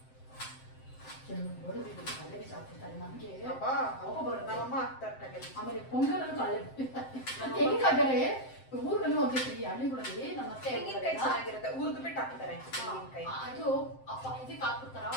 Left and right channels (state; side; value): late; right; 7.7 ms